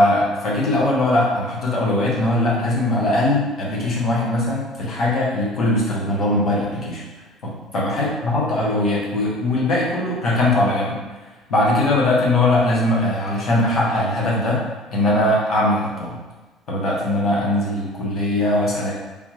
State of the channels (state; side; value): normal; both; correlation 0.43